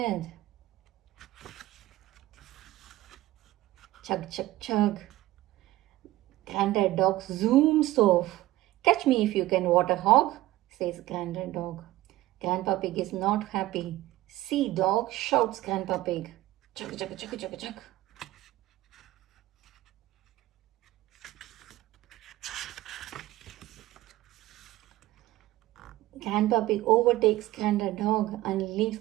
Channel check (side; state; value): left; quieter; 16.3 dB